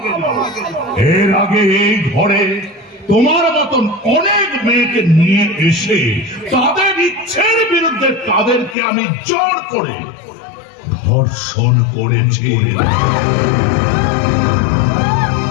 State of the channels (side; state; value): right; drops out; at 8.8 s